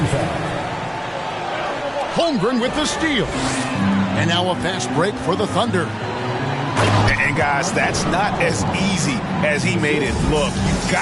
foul. Holmgren with the steal. And now a fast break for the Thunder. And guys, that's not as easy as he made it look. You've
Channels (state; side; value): identical; both; correlation 1.00